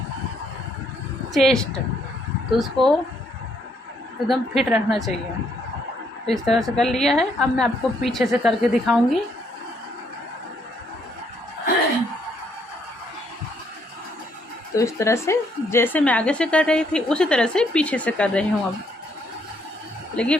चेस्ट। तो उसको एकदम फिट रखना चाहिए। तो इस तरह से कर लिया है। अब मैं आपको पीछे से करके दिखाऊंगी। तो इस तरह से जैसे मैं आगे से कर रही थी उसी तरह से पीछे से कर रही हूँ अब। लेकिन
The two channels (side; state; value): both; normal; correlation 0.71